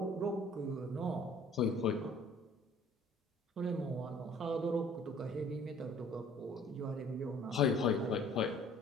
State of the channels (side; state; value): both; normal; correlation 0.53